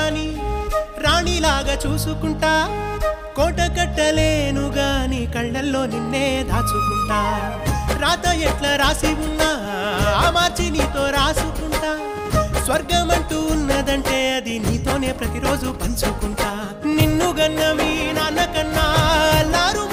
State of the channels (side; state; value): both; identical; correlation 1.00